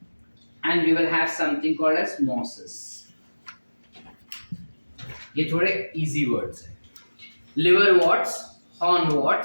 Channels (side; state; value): both; inverted; correlation -1.00